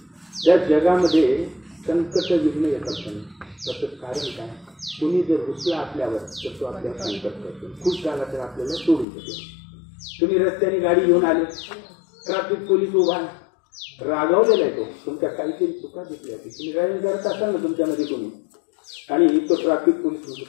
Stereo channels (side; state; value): right; drops out; at 9.1 s